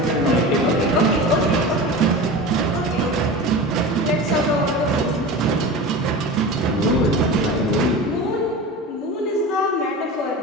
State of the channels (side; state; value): both; normal; correlation 0.30